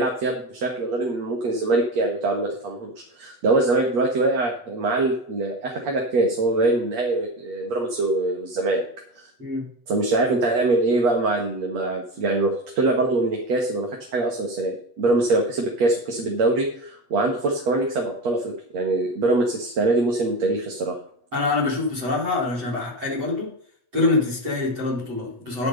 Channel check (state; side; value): late; left; 8.4 ms